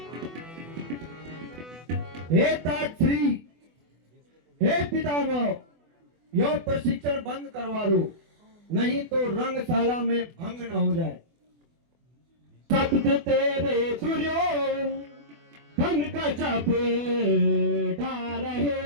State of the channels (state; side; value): late; left; 24 ms